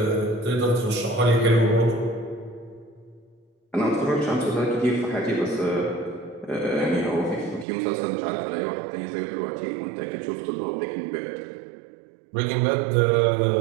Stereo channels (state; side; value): drops out; left; at 7.7 s